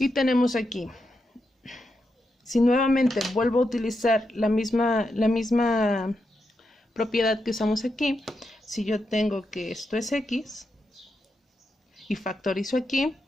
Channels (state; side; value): normal; both; correlation 0.85